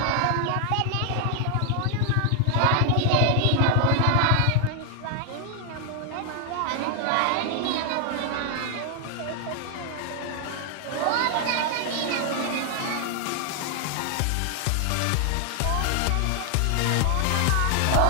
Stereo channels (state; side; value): different; both; correlation 0.00